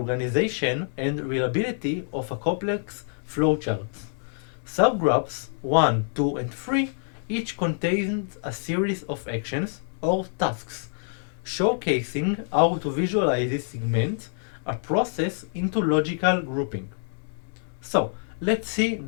and reliability of a complex flowchart. Subgraphs 1, 2, and 3 each contains a series of actions or tasks, showcasing how to visualize this segment a process into logical grouping. So let's see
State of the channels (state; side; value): silent; right; 61 dB below the other